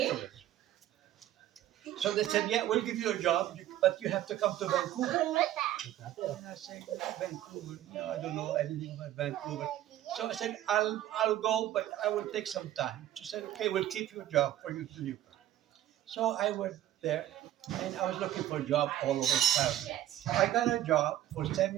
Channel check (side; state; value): left; quieter; 12.8 dB